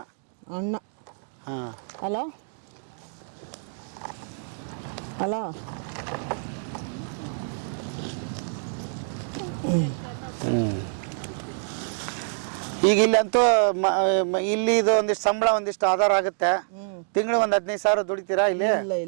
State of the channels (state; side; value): silent; left; digital silence